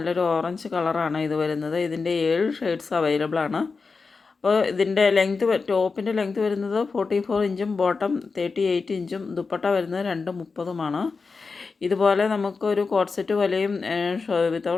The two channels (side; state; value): right; quieter; 4.6 dB